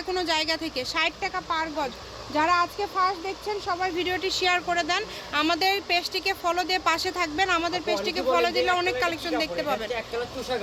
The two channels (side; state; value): both; identical; correlation 1.00